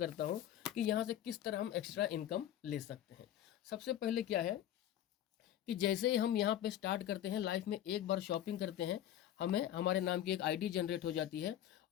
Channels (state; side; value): quieter; right; 11.5 dB